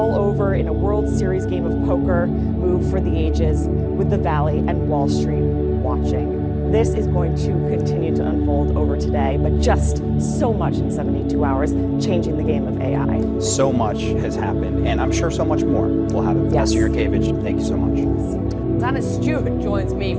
over in a World Series game of poker, move for the ages, with the Valley and Wall Street watching. This is going to continue to unfold over today, but just so much in 72 hours, changing the game of AI. So much has happened, and I'm sure so much more will happen. Professor Yurkevich, thank you so much. Anna Stewart joins me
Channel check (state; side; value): identical; both; correlation 1.00